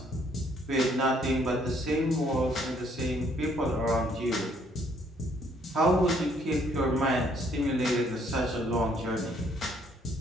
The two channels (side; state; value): both; normal; correlation 0.66